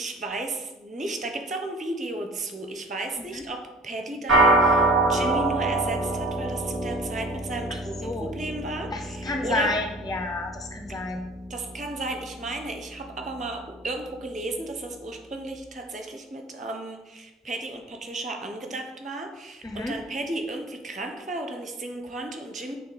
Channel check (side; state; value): both; normal; correlation 0.45